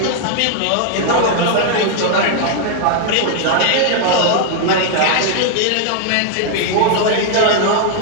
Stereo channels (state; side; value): different; both; correlation 0.00